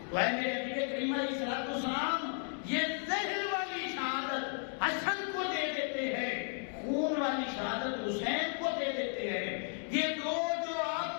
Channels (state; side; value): silent; right; 55 dB below the other